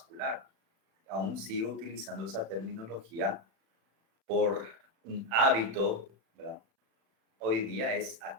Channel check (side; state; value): left; late; 36 ms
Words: Aún sigo utilizando esa terminología por un hábito, ¿verdad? Hoy día